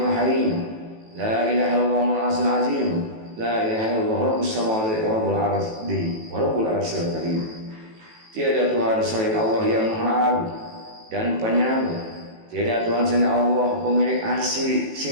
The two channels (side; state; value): left; late; 18 ms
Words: harim, la ilaha illallah al-azim azim, la ilaha illallah rabbus samawati wa rabbul ardi wa rabbul arsyil karim. Tiada Tuhan selain Allah yang Maha Agung dan Penyayang. Tiada Tuhan selain Allah pemilik arsy